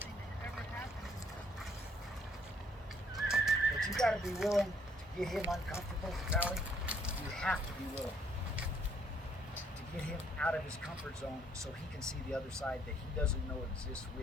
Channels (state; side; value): normal; both; correlation 0.66